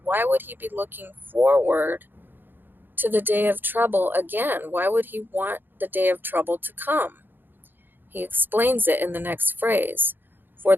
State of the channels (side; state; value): left; late; 0.095 ms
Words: Why would he be looking forward to the day of trouble again? Why would he want the day of trouble to come? He explains it in the next phrase, for